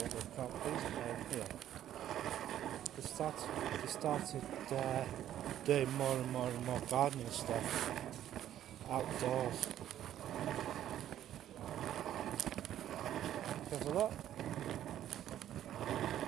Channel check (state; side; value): quieter; left; 11.5 dB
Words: they've got here. They started doing more and more gardening stuff outdoors. Have a look.